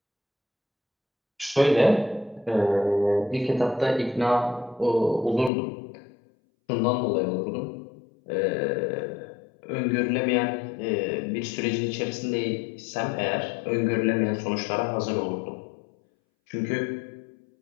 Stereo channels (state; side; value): drops out; right; at 5.5 s